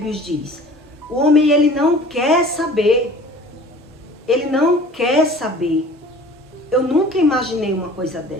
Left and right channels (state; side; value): normal; both; correlation 0.46